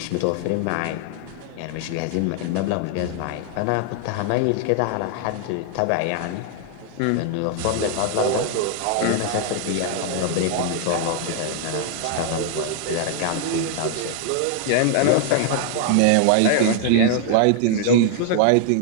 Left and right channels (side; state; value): both; different; correlation 0.00